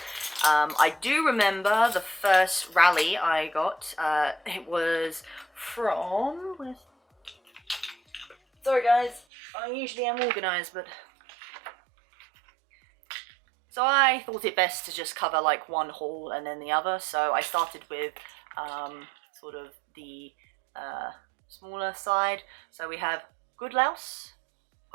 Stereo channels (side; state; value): left; drops out; at 9.2 s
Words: I do remember the first rally I got. It was from... Sorry guys, I usually am organised, but... So I thought it best to just cover like one haul and then the other. So I started with sort of the smaller side. So we have Goodlouse,